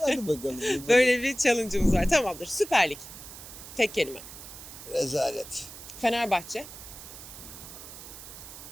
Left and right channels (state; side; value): noise; right; hiss, 14 dB below the sound